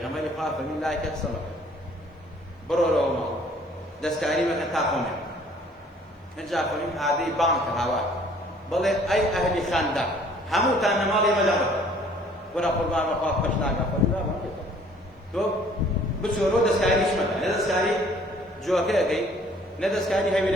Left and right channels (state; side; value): normal; both; correlation 0.57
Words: غمر يقال فمن لا يكسرك برو لو ما دستاري ما كتاكم نجا فمن هذه بانك هوا بل أي أهل خاندا همو تان مالي مجمع ولا قربان وقاف فشنا قاف لا ما كده تو بسورو دستاري شمال ندستاري جوكي كي ندستاري هاي